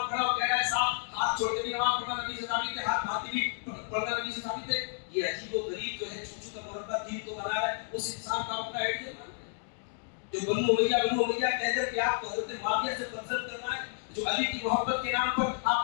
پڑھا، وہ کہہ رہا ہے صاحب ہاتھ چھوڑ کے بھی نماز پڑھنا نبی سے ثابت ہے، ہاتھ بھاتی بھی پڑھنا نبی سے ثابت ہے. یہ عجیب و غریب جو ہے چھوٹو کا مربع دین تو بنا رہا ہے، اس انسان کا اپنا آئیڈیا مان رہا ہے. جو بنو امیہ کہہ کر کہ آپ کو حضرت معاویہ سے پسند کرنا ہے، جو علی کی محبت کے نام پر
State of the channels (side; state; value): right; silent; digital silence